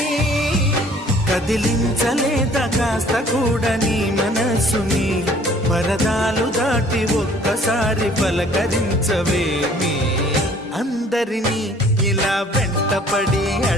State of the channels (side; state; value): both; normal; correlation 0.55